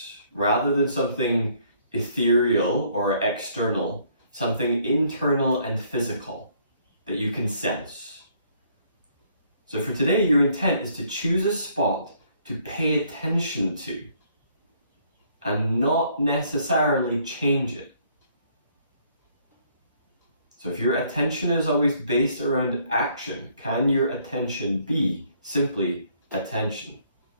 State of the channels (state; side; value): inverted; both; correlation -0.65